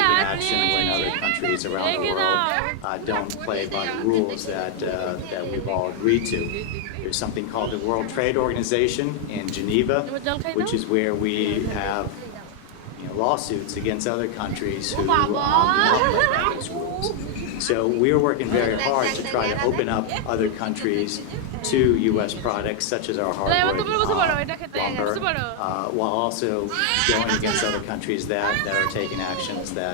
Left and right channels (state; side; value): different; both; correlation 0.00